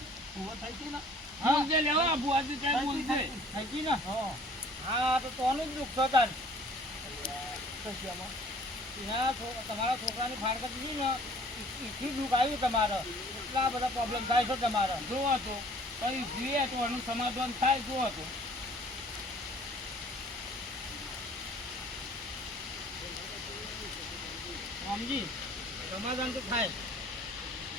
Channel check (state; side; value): normal; both; correlation 0.53